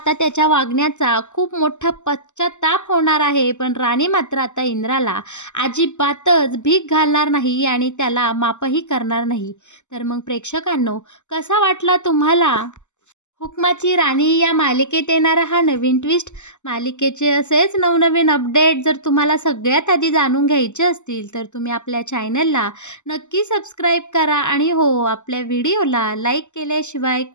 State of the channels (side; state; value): right; late; 0.84 ms